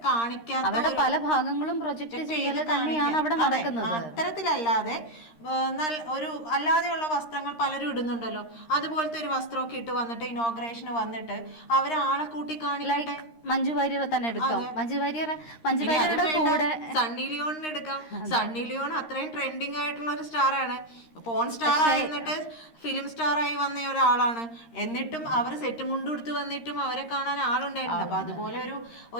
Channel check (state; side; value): late; right; 13 ms